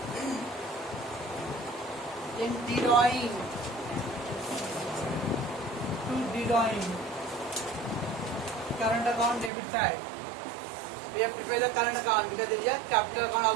Then drawing current account debit side. We have prepared the current account because there is a capital account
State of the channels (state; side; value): drops out; left; at 9.5 s